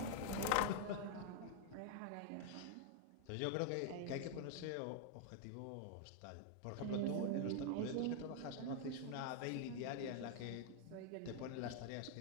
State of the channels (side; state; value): both; different; correlation 0.00